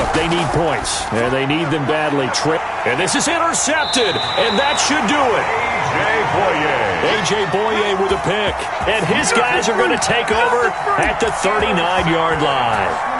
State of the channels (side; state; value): both; identical; correlation 1.00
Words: they need points. And they need them badly. And this is intercepted. And that should do it. A.J. Boye with a pick. And his guys are going to take over at the 39-yard line.